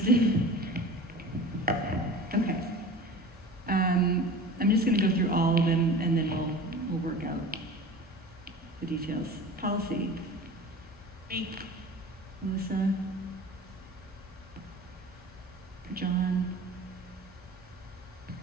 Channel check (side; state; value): both; normal; correlation 0.37